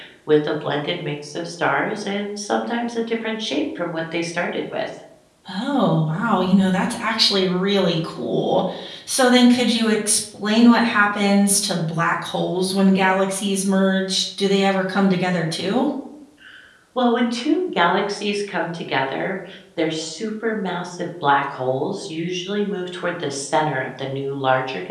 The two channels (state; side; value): identical; both; correlation 1.00